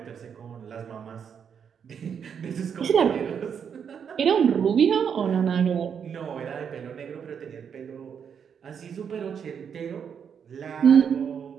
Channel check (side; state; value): left; quieter; 7.4 dB